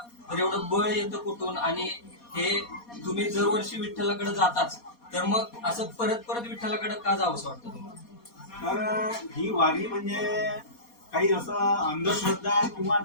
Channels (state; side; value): late; right; 4.2 ms